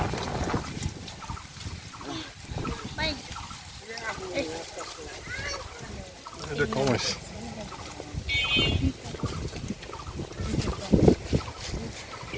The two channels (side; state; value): both; identical; correlation 1.00